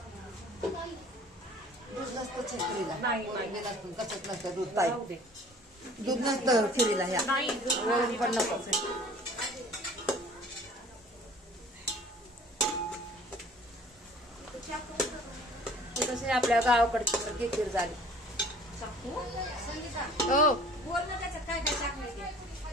दूध नसतं खिरीला. नाही. वरून नसतं, कशात नसतं दूध ताई. जाऊ दे. दूध नसतं खिरीला ह्या. नाही. वरून पण नको. ते कसे आपल्या गावाकडची सारखी खीर झाली. हो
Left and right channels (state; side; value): normal; both; correlation 0.50